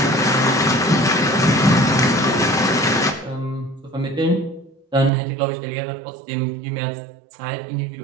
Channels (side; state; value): left; drops out; at 5.1 s